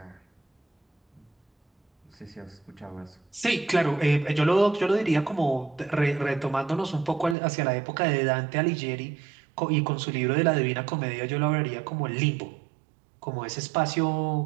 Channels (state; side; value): drops out; left; at 7.4 s